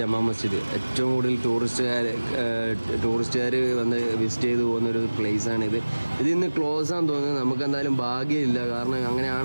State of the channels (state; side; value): inverted; both; correlation -1.00